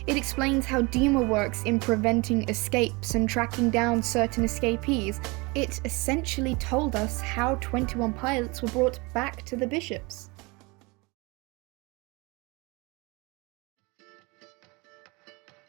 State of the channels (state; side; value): quieter; left; 26.2 dB